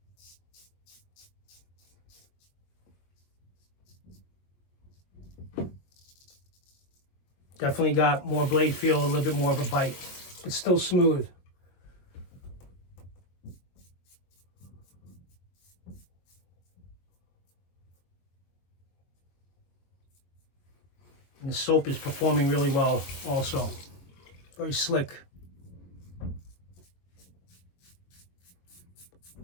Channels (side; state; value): right; late; 22 ms